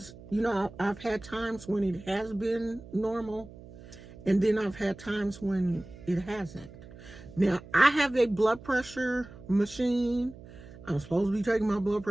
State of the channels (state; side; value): noise; right; hum, 18 dB below the sound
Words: I've had times when it has been normal. And then I've had times when it hasn't. Now I have a blood pressure machine. I'm supposed to be taking my blood